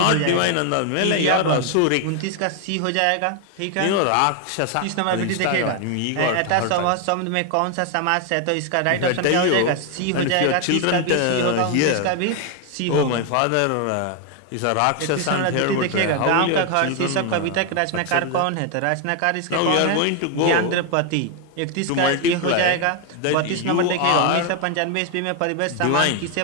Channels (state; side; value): different; both; correlation 0.01